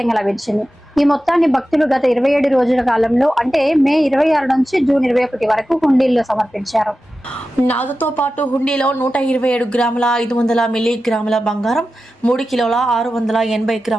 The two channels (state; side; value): normal; both; correlation 0.93